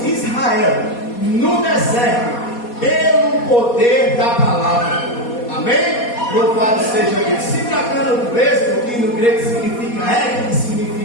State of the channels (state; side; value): late; right; 4.2 ms